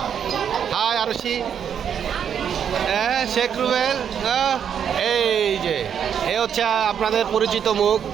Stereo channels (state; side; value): quieter; left; 8.2 dB